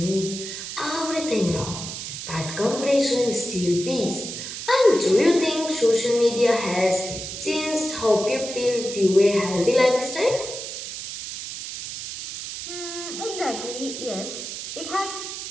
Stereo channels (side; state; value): right; noise; hiss, 8 dB below the sound